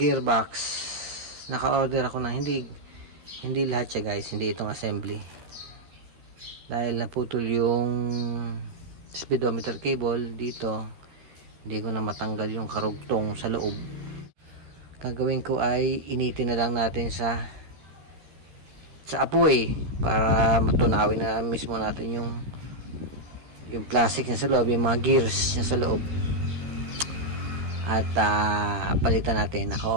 Naka-order ako ng hindi lahat siya guys, hindi itong assembly. Dahil naputol yung speedometer cable dito, hindi ko na matanggal yung karugtong sa loob. Gagawin ko ay initin na lang natin sa apoy para matunawin na mismo natin yung plastic niya sa loob, yung mga gears niya sa loob. At palitan natin,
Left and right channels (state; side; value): late; left; 13 ms